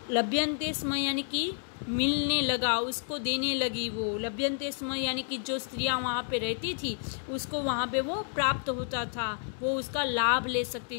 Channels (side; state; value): right; silent; 58 dB below the other